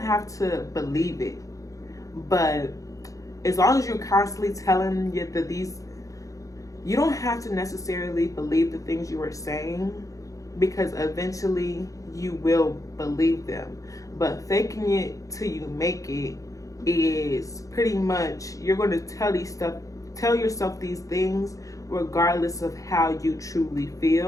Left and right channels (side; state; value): right; late; 0.16 ms